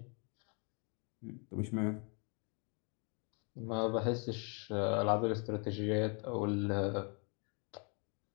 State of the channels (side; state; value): right; quieter; 35.5 dB